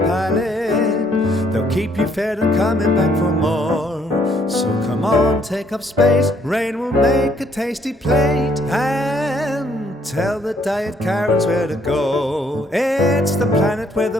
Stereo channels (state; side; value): normal; both; correlation 0.67